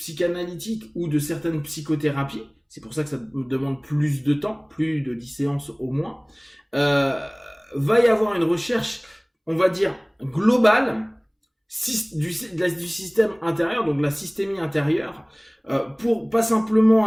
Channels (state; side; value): identical; both; correlation 1.00